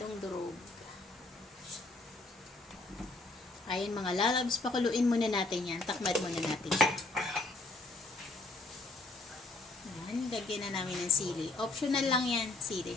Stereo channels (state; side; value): quieter; right; 3.1 dB